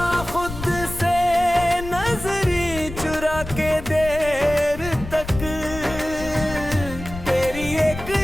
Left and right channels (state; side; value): noise; left; rumble, 10 dB below the sound